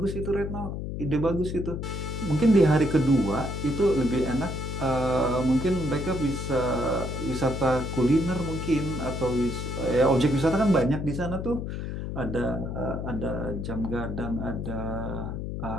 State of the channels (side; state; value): left; noise; hum, 5 dB below the sound